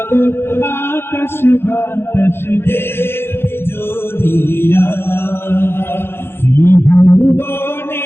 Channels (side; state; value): right; late; 0.11 ms